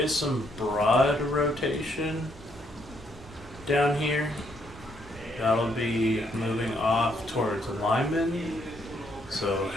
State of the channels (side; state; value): both; normal; correlation 0.72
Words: some broad rotation down here. That'll be moving off towards Lyman. So